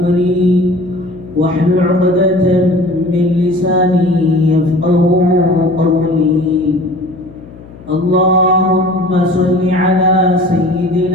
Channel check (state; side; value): noise; left; hum, 20 dB below the sound